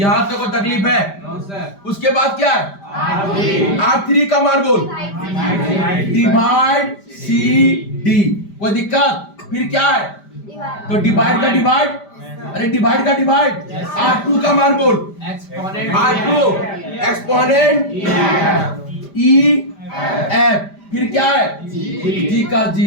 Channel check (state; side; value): late; right; 5.0 ms